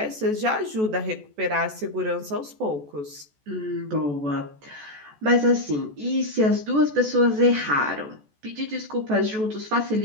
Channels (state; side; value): late; left; 14 ms